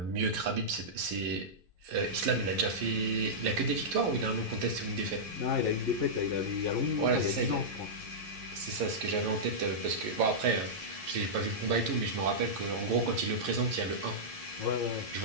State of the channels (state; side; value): late; left; 11 ms